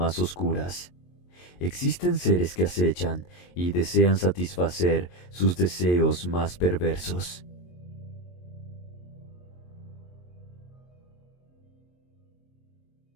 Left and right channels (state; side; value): late; right; 22 ms